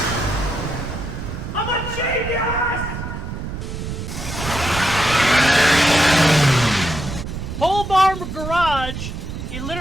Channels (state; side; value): noise; right; rumble, 7 dB below the sound